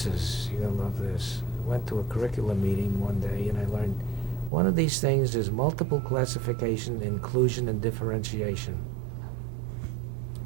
to love this. I went to a curriculum meeting one day and I learned one of these things is multiple classification, inclusion, and differentiation.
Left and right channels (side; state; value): left; drops out; at 4.5 s